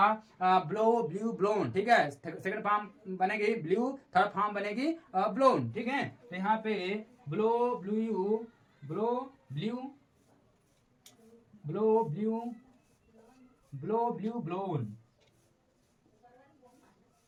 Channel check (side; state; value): both; identical; correlation 1.00